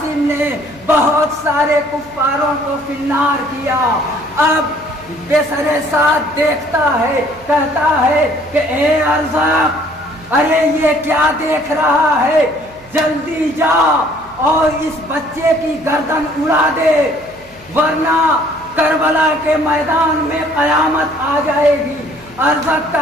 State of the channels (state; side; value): noise; right; hum, 26 dB below the sound